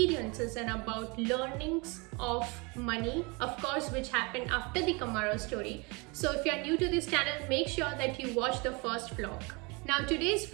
and about learnings of money, of course, which happened after the Camaro story. So if you are new to this channel, make sure that you watch the first vlog. Now today's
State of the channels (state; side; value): quieter; left; 28.6 dB